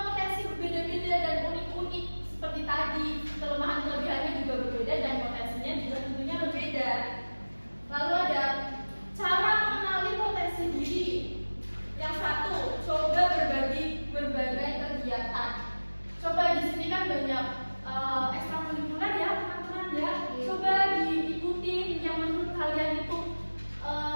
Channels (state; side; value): inverted; both; correlation -1.00